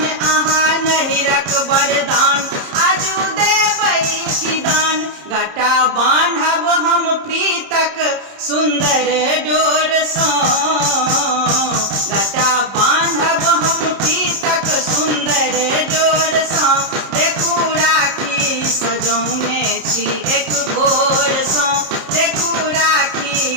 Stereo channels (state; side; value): late; left; 30 ms